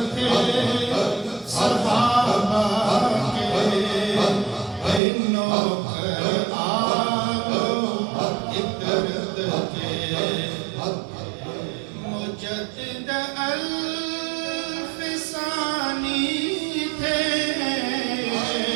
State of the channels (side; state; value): left; drops out; at 5.0 s